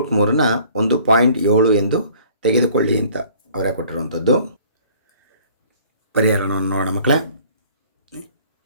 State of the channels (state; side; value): inverted; both; correlation -0.53